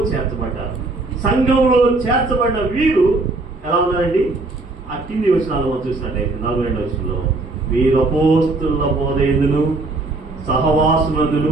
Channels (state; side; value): quieter; left; 3.2 dB